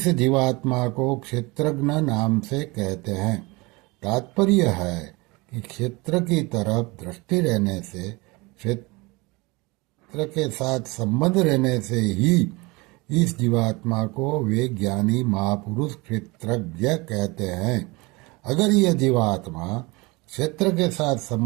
जीवात्मा को क्षेत्रज्ञ नाम से कहते हैं। तात्पर्य है कि क्षेत्र की तरफ दृष्टि रहने से, क्षेत्र के साथ संबंध रहने से ही इस जीवात्मा को वे ज्ञानी महापुरुष क्षेत्रज्ञ कहते हैं। अगर यह जीवात्मा क्षेत्र के साथ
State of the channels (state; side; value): quieter; left; 24.7 dB